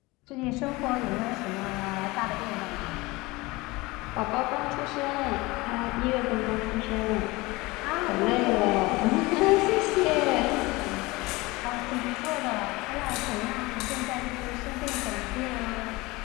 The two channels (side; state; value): right; quieter; 22.3 dB